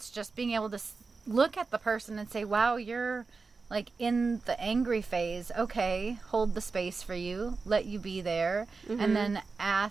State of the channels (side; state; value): left; quieter; 4.4 dB